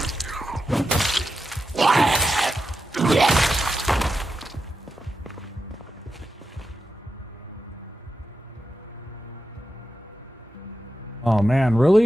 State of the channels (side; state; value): both; normal; correlation 0.89